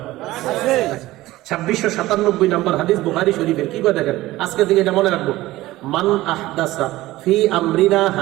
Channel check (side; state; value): left; quieter; 17.3 dB